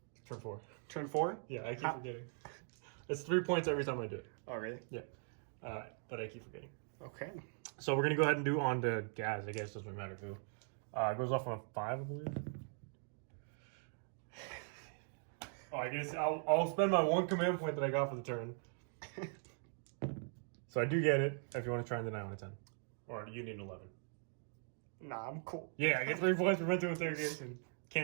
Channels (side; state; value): left; silent; 51 dB below the other